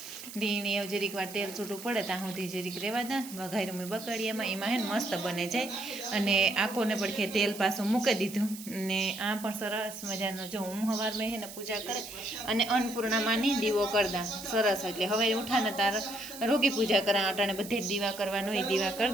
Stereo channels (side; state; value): right; noise; hiss, 13 dB below the sound